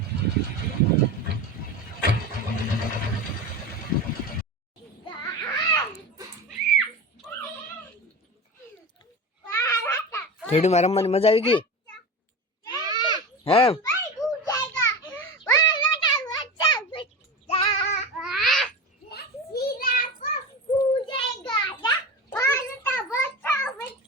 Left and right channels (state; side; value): normal; both; correlation 0.27